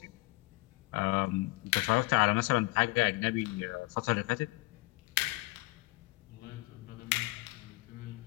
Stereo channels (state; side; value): quieter; right; 22.7 dB